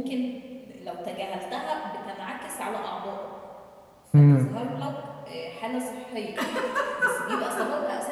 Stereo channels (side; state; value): both; identical; correlation 1.00